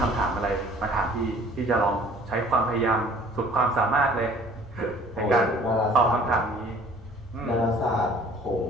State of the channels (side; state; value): both; normal; correlation 0.52